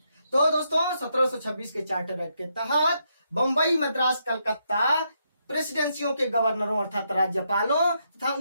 तो दोस्तों 1726 के चार्टर एक्ट के तहत बंबई, मद्रास, कलकत्ता प्रेसिडेंसियों के गवर्नरों अर्थात राज्यपालों तथा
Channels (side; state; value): both; inverted; correlation -0.79